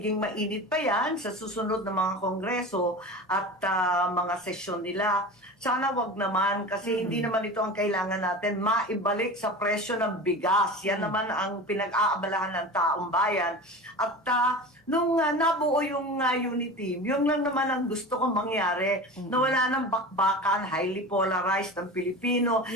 mainit pa yan sa susunod na mga kongreso at mga sesyon nila. Sana wag naman kasi hindi naman ito ang kailangan natin, maibalik sa presyo ng bigas. Yan naman ang pinag-aabalahan ng taong bayan. At nung nabuo yung unit team, yun lang naman ang gusto kong mangyari, na wala ng bakbakan, highly polarized ang Pilipino,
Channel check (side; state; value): both; normal; correlation 0.32